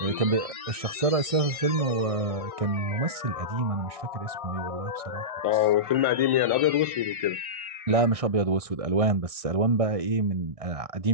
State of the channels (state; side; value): late; left; 1.5 ms